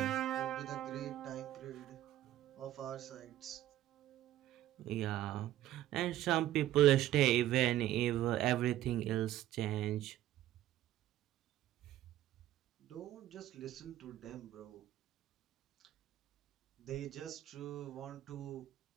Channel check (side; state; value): left; quieter; 13.5 dB